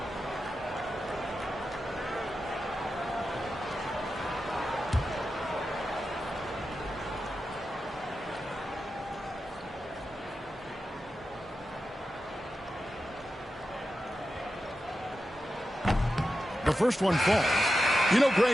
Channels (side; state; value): both; normal; correlation 0.90